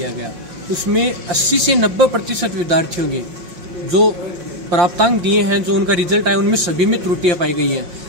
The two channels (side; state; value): left; late; 5.6 ms